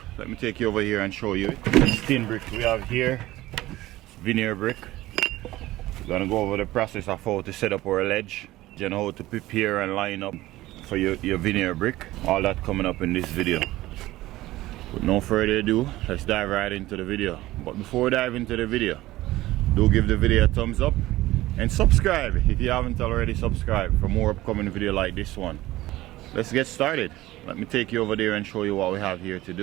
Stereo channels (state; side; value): quieter; left; 17.0 dB